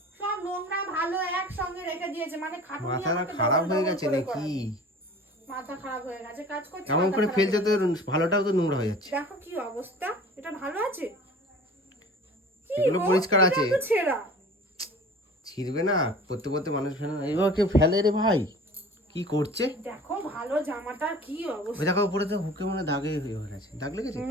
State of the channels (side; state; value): both; normal; correlation 0.43